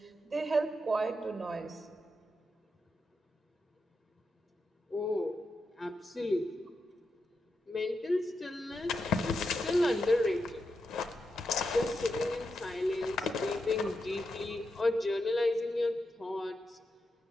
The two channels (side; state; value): both; normal; correlation 0.86